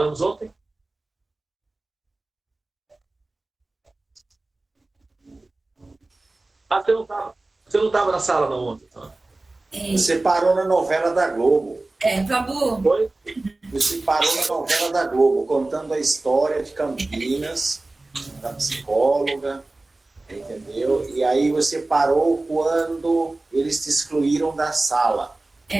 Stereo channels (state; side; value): quieter; left; 3.0 dB